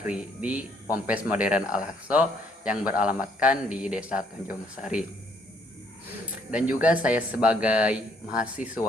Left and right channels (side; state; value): both; normal; correlation 0.66